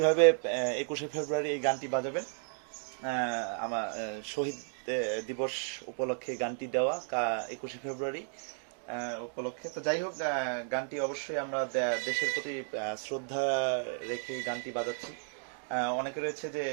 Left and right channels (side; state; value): left; silent; 56 dB below the other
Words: 21শে ফেব্রুয়ারি এই গানটি বাজাবেন। আমার শহীদ দিবস উপলক্ষে গানটি দেওয়া 21শে ফেব্রুয়ারি উপলক্ষে। তো যাই হোক, গানটি অবশ্যই আমরা দেশের প্রতি শ্রদ্ধা রেখে গানটি বাজাচ্ছি। অনেকে রয়েছে যে